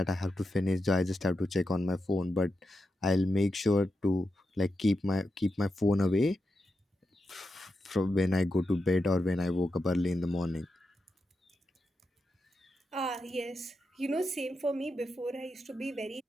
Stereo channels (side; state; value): both; normal; correlation 0.87